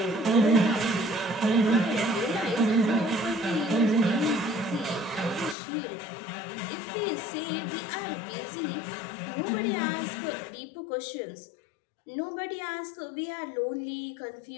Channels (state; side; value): drops out; right; at 5.6 s